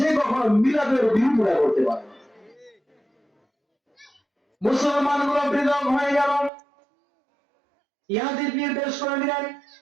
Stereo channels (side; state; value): left; drops out; at 6.5 s